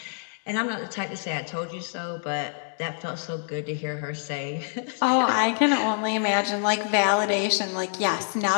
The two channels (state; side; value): silent; right; digital silence